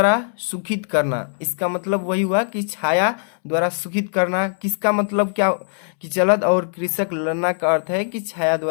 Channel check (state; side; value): silent; right; 65 dB below the other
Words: सुखित करना, इसका मतलब वही हुआ कि छाया द्वारा सुखित करना। किसका मतलब क्या कि जलद और कृषक ललना का अर्थ है कि छाया